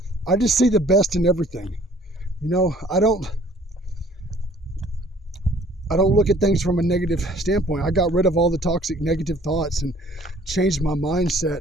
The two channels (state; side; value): normal; both; correlation 0.55